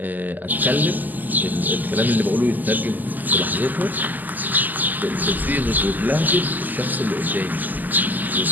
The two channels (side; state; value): left; late; 0.084 ms